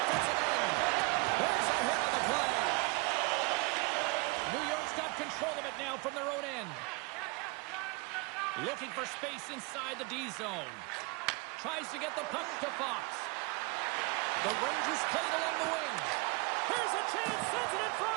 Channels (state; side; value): quieter; left; 28.0 dB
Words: end. There's a hit on the play. New York's got control of it now from their own end. Looking for space inside the D zone. Tries to get the puck to Fox. The Rangers play it along the wing. Here's a chance, sends it in